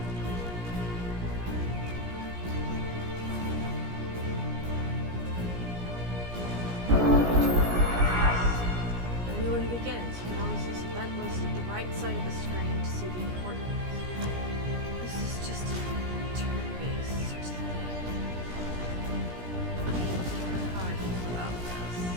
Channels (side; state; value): left; late; 17 ms